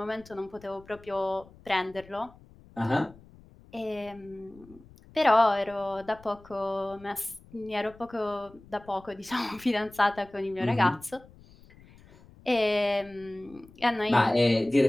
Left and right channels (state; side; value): noise; left; rumble, 24 dB below the sound